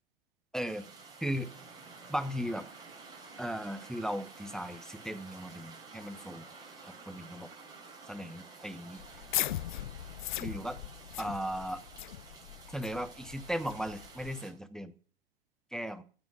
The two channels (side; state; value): both; normal; correlation 0.65